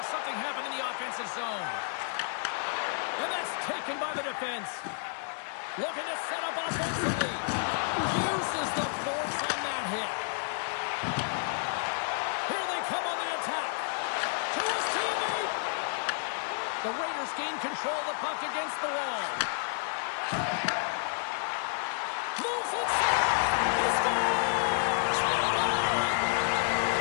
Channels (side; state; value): right; silent; 57 dB below the other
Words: something happen in the offensive zone. And that's taken by the defense. Looking to set up offensively. Uses the force on that hit. Here they come on the attack. To his teammate. The Raiders gain control of the puck against the wall. Moves inside. He scores!